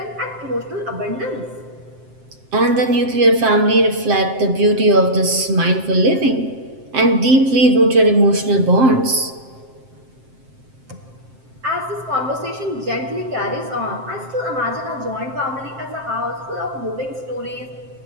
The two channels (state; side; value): late; left; 7.6 ms